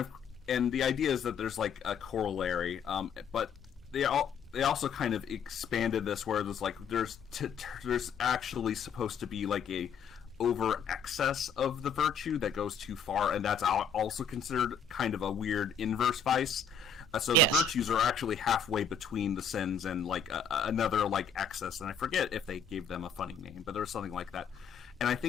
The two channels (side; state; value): right; quieter; 5.7 dB